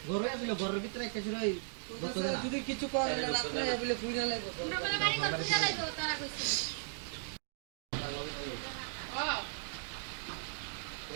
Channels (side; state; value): left; silent; digital silence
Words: ঘরে আসলো ঘরের ভিতরে একটা ছিল যদি কিছু করে রাত্রে বলে কুইরা লাগবে